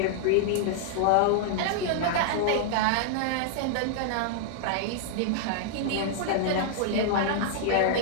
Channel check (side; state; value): both; different; correlation -0.01